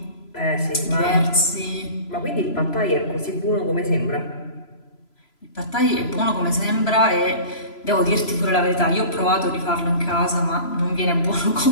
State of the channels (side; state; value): right; late; 3.0 ms